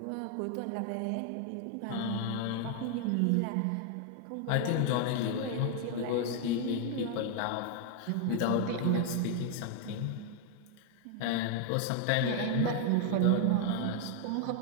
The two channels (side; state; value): both; different; correlation 0.00